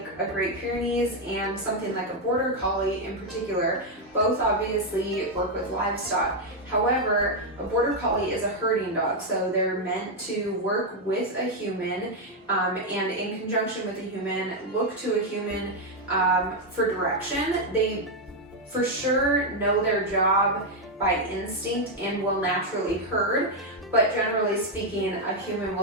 a Great Pyrenees and something like a Border Collie in particular, both obviously work with livestock. However, a Border Collie is a herding dog, so they're meant to work with a human and in conjunction with a human, look to a human for direction. They for sure know their job by instinct and will naturally herd, but generally speaking, a human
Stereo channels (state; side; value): normal; both; correlation 0.02